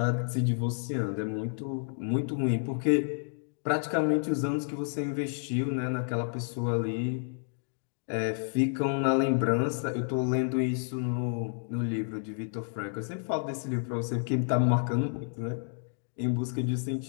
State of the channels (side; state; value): right; silent; digital silence